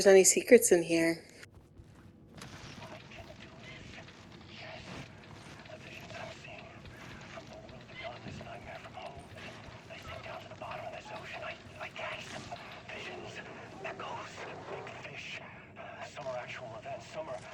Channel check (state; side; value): identical; both; correlation 1.00